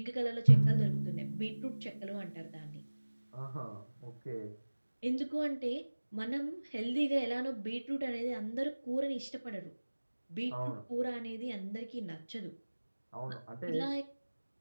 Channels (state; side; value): inverted; both; correlation -1.00